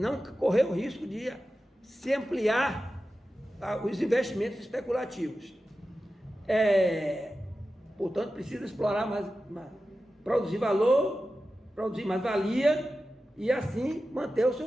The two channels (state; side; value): normal; both; correlation 0.93